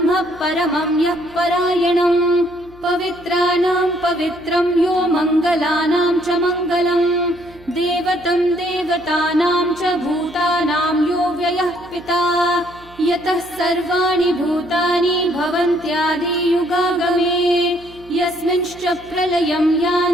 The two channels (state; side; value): noise; right; hum, 24 dB below the sound